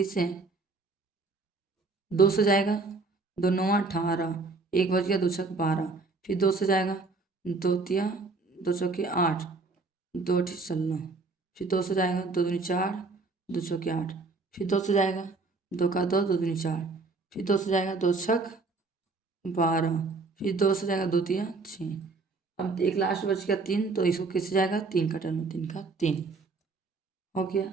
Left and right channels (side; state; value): left; quieter; 3.8 dB